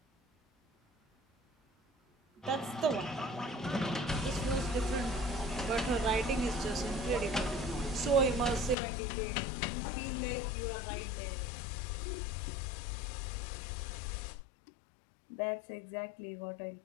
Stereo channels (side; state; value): right; drops out; at 8.8 s